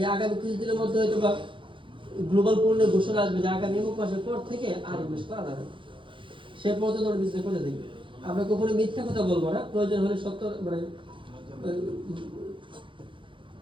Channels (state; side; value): late; left; 0.24 ms